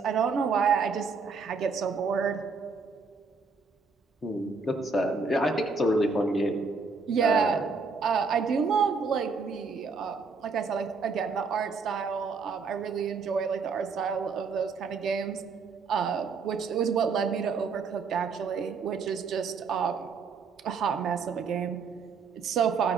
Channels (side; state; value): left; quieter; 4.8 dB